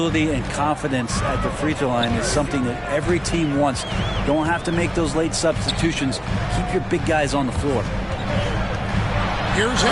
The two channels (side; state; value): both; identical; correlation 1.00